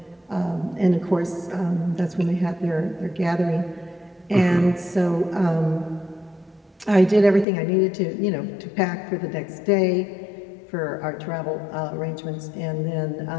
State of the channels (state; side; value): drops out; right; at 7.5 s